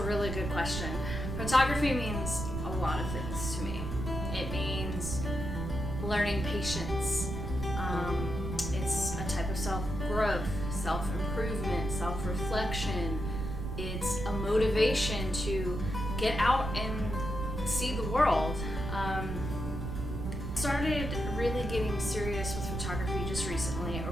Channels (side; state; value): right; noise; rumble, 4 dB below the sound